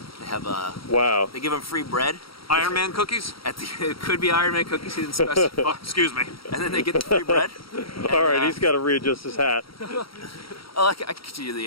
they have Wow. They give him free bread. Iron Man cookies? It could be Iron Man cookies. He didn't specify. Oh, excuse me. And then they get the free bread. All right, he's got to readjust his hat. Oh, I can continue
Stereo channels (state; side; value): late; right; 0.75 ms